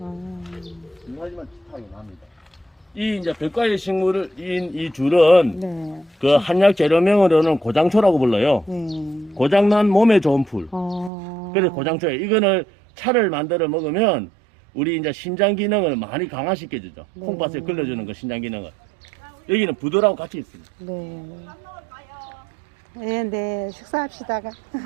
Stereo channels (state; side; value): drops out; left; at 11.1 s